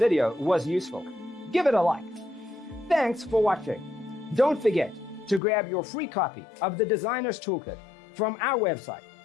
was useful, give it a like. Thanks for watching. Don't forget to grab your free copy of the Designer's Toolkit from our website,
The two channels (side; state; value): right; drops out; at 5.4 s